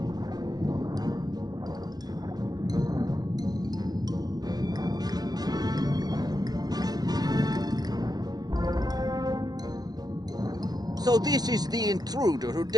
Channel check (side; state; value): left; late; 0.19 ms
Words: So this is the intruder who